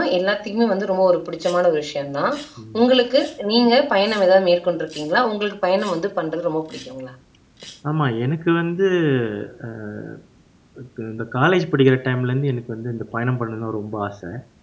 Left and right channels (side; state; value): both; identical; correlation 1.00